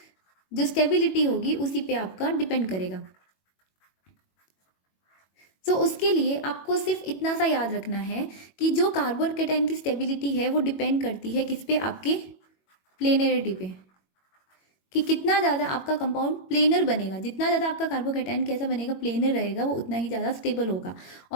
जो स्टेबिलिटी होगी उसी पे आपका डिपेंड करेगा। सो उसके लिए आपको सिर्फ इतना सा याद रखना है कि जो कार्बोकेटाइन की स्टेबिलिटी है वो डिपेंड करती है किस पे, आपके प्लेनरिटी पे, कि कितना ज़्यादा आपका कंपाउंड प्लेनर बनेगा। जितना ज़्यादा आपका कार्बोकेटाइन कैसा बनेगा, प्लेनर रहेगा, वो उतना ही ज़्यादा स्टेबल होगा।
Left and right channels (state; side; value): late; right; 21 ms